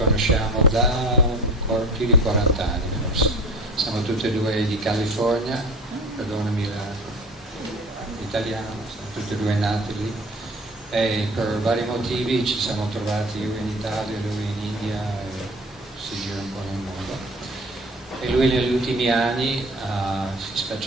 da più di 40 anni forse. Siamo tutti e due di California, perdonami l'italiano, siamo tutti e due nati lì e per vari motivi ci siamo trovati, io in Italia, lui in India e si gira un po' nel mondo. E lui negli ultimi anni si è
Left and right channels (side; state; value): both; normal; correlation 0.38